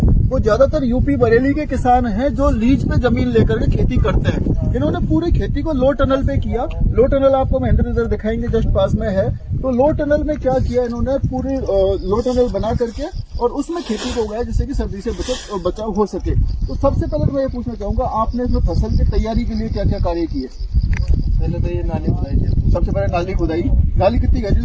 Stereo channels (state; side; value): identical; both; correlation 1.00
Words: वो ज्यादातर यूपी बरेली के किसान हैं जो लीज पे जमीन लेकर के खेती करते हैं। इन्होंने पूरी खेती को लो टनल पे किया। लो टनल आपको महेंद्र इधर दिखाएंगे, जस्ट पास में है। तो लो टनल में क्या किया इन्होंने, पूरी लो टनल बना करके और उसमें खेती को उगाया जिससे कि सर्दी से बचाव हो सके। तो सबसे पहले तो मैं ये पूछना चाहूंगा, आपने इसमें फसल की तैयारी के लिए क्या क्या कार्य किए? पहले तो ये नाली खुदाई। सबसे पहले नाली खुदाई। नाली कितनी गहरी